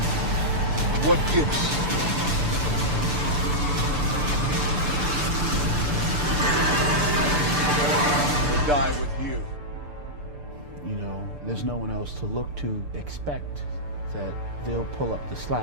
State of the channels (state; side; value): late; left; 6.8 ms